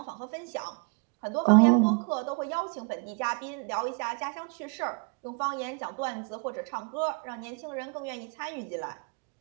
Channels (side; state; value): left; quieter; 34.3 dB